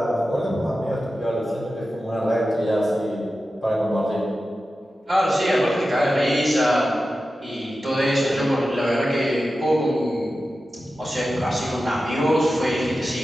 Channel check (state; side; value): normal; both; correlation 0.93